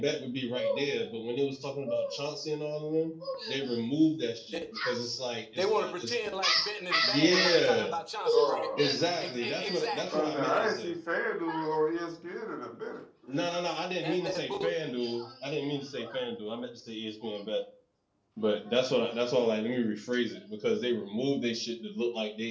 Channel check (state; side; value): identical; both; correlation 1.00